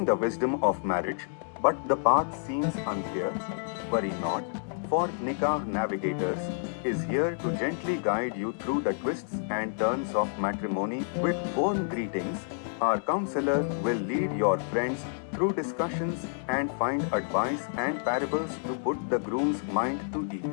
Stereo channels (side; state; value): right; silent; digital silence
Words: the wisdom of marriage, but the path seems unclear. Worry not, for Nikah Navigators is here to gently guide you through the twists and turns of matrimony. With warm greetings, our counselor will lead your friends through discussions and find advice and parables to put the groom's mind to